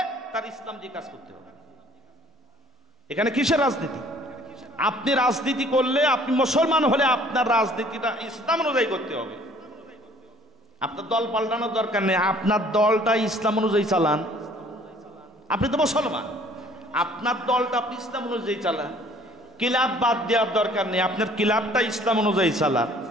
তার ইসলাম দিয়ে কাজ করতে হবে। এখানে কিসের রাজনীতি? আপনি রাজনীতি করলে, আপনি মুসলমান হলে আপনার রাজনীতিটা ইসলাম অনুযায়ী করতে হবে। আপনার দল পাল্টানোর দরকার নেই, আপনার দলটা ইসলাম অনুযায়ী চালান। আপনি তো মুসলমান, আপনার দলটা আপনি ইসলাম অনুযায়ী চালান। ক্লাব বাদ দেওয়ার দরকার নেই, আপনার ক্লাবটা ইসলাম অনুযায়ী চালান।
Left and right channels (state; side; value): normal; both; correlation 0.56